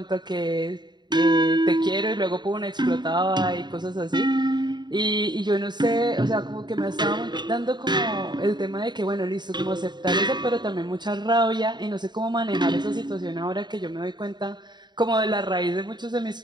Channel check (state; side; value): late; left; 0.21 ms